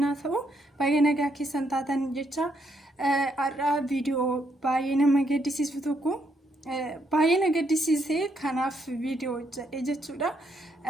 ta'u baay'ee nagaa keessan taatan jecha har'a viidiyoo baay'ee nama gaddisiisu tokko baay'ee na gaddisiisee kanaaf viidiyoo hojjedhe jechuudha.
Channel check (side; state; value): both; normal; correlation 0.75